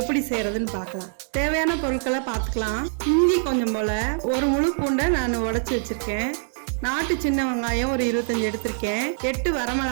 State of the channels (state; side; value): silent; left; digital silence